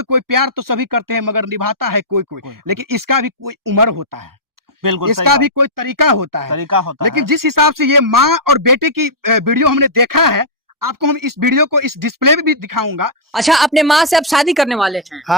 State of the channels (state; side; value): normal; both; correlation -0.11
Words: कोई, प्यार तो सभी करते हैं मगर निभाता है कोई कोई, लेकिन इसका भी कोई उम्र होता है, बिल्कुल इसका भी कोई तरीका होता है। लेकिन जिस हिसाब से ये माँ और बेटे की वीडियो हमने देखा है, आपको हम इस वीडियो को इस डिस्प्ले में भी दिखाऊंगा। अच्छा, अपने माँ से आप शादी करने वाले हैं?